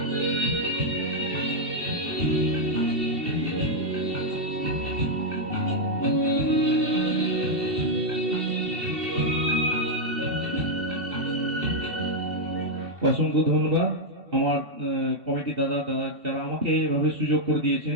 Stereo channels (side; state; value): left; late; 2.7 ms